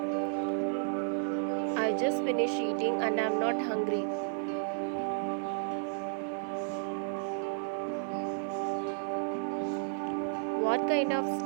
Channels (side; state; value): left; silent; digital silence